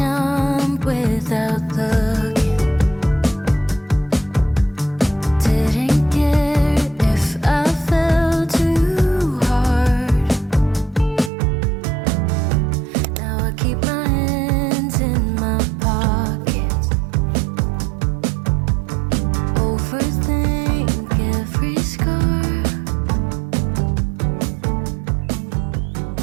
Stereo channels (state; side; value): drops out; left; at 11.3 s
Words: without looking. Didn't care if I fell too hard. Now I keep my hands in my pockets. Overthink every scar.